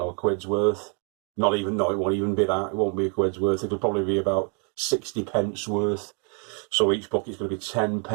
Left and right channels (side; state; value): left; quieter; 37.7 dB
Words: a quid's worth. Not even, no, it won't even be that. It won't be a quid's worth. It'll probably be about 60 pence worth. So each bucket's going to be 10